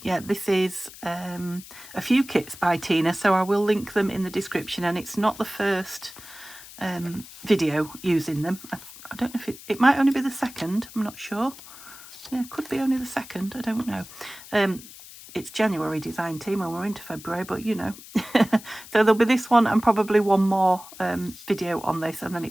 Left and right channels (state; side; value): noise; left; hiss, 17 dB below the sound